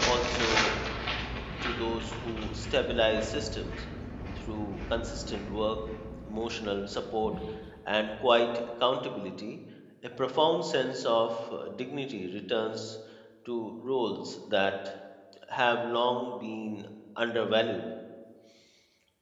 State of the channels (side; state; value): both; identical; correlation 1.00